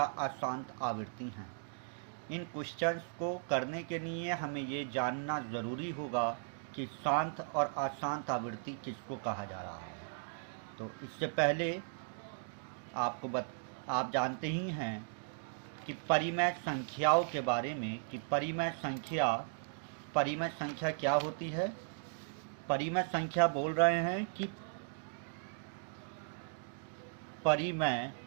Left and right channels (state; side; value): silent; left; digital silence